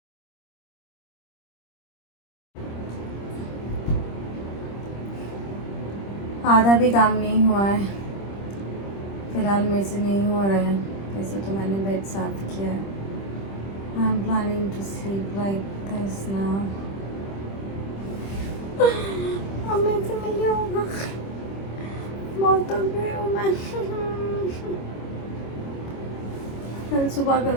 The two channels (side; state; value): right; late; 25 ms